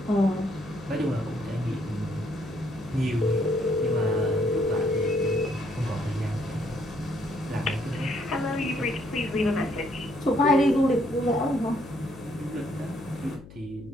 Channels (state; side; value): noise; left; hum, 18 dB below the sound